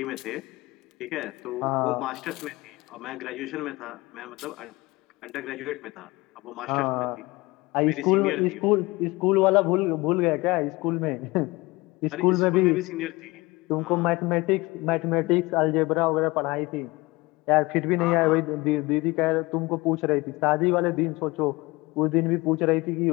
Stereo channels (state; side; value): quieter; right; 22.3 dB